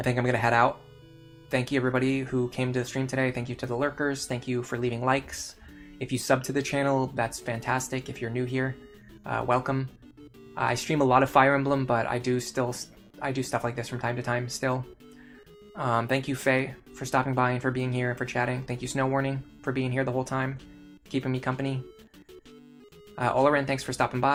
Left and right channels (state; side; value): identical; both; correlation 1.00